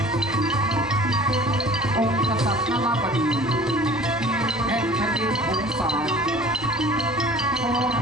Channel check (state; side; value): normal; both; correlation 0.46